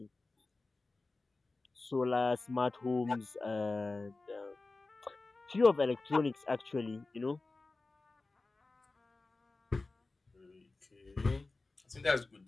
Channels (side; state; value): right; quieter; 3.4 dB